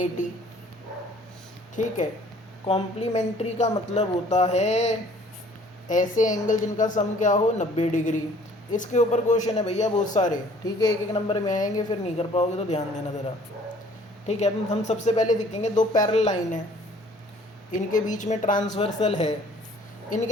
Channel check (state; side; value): normal; both; correlation 0.55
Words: ठीक है, कॉम्प्लीमेंट्री का मतलब होता है ऐसे एंगल जिनका सम क्या हो? 90 डिग्री। इसके ऊपर क्वेश्चन है भैया बहुत सारे। ठीक है, एक एक नंबर में आएंगे, फिर नहीं कर पाओगे तो ध्यान देना ज़रा। ठीक है, अब हम सबसे पहले देखेंगे दो पैरेलल लाइन है, इनके बीच में ट्रांसवर्सल है,